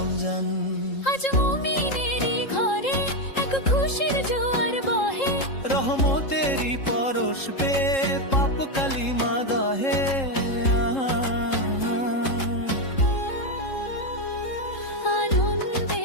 আজ মুমিনেরই ঘরে এক খুশির জোয়ার বহে, রহমতেরই পরশ পে পাপ কালিমা দহে। আনন্দে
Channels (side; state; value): right; late; 3.7 ms